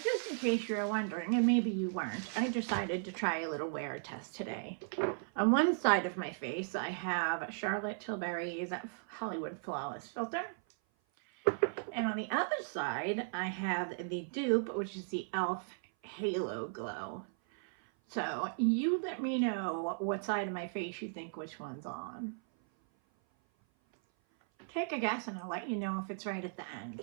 just in case you're wondering, and maybe you weren't, I decided to try a little wear test today. On one side of my face, I have Charlotte Tilbury's Hollywood Flawless Filter. And on the other side, I have the dupe, which is the e.l.f. Halo Glow. So you let me know what side of my face you think which one's on. Take a guess and I'll let you know if it's right at the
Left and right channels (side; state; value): left; silent; 54 dB below the other